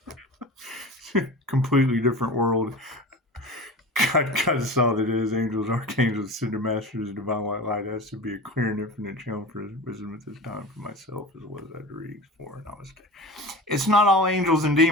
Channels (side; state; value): both; normal; correlation 0.33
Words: Completely different world. God saw that it is angels, archangels, cinder masters, divine white light has to be a clear and infinite channel for his wisdom at this time for myself as well as I read for Namaste. It's not all angels and